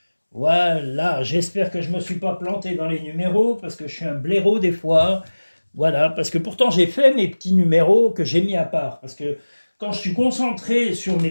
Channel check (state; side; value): inverted; both; correlation -1.00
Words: Voilà, j'espère que je ne me suis pas planté dans les numéros, parce que je suis un blaireau des fois. Voilà, parce que pourtant j'ai fait mes petits numéros que j'ai mis à part. Parce que quand je suis concentré sur